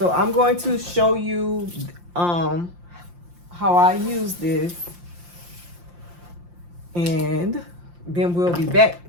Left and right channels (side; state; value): left; late; 5.7 ms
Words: I'm going to show you how I use this, and then we'll be